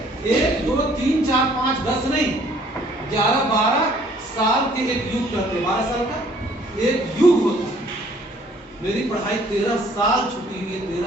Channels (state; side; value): normal; both; correlation 0.59